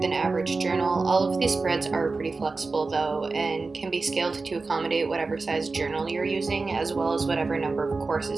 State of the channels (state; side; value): quieter; left; 3.9 dB